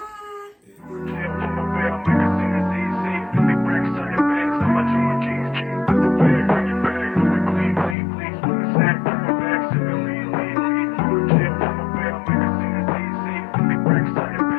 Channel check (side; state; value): right; drops out; at 8.0 s